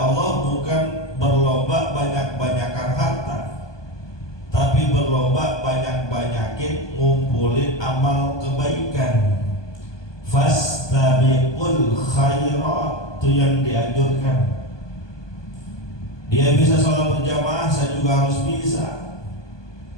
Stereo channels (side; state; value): right; late; 1.2 ms